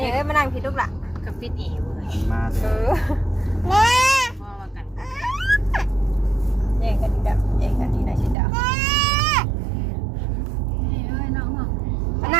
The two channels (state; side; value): drops out; left; at 8.3 s